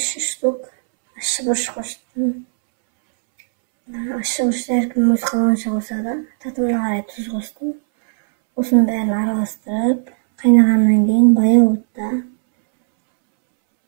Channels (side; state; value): left; silent; 68 dB below the other